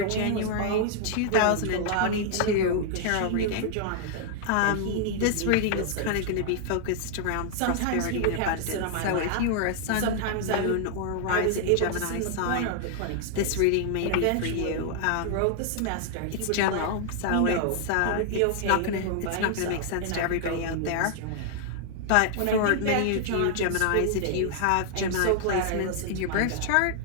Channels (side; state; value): both; different; correlation 0.00